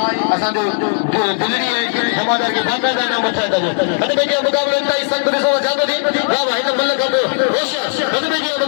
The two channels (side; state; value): right; silent; 68 dB below the other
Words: असा जो गुजरी है जमादार के बाकायदा नाम वठाइंदा जो बदे बेजे मुकाबले ताई संग दिसो जादो दी वाह भाई तो मल्ल कबो होश बदे बेजे